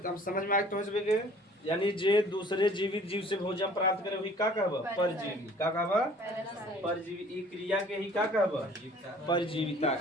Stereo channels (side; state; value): both; normal; correlation 0.52